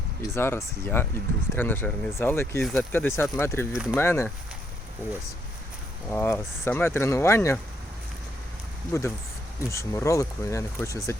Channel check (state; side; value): normal; both; correlation 0.75